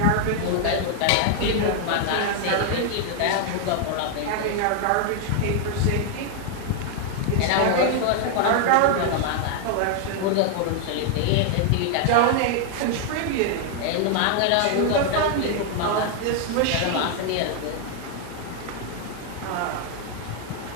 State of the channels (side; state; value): both; different; correlation 0.00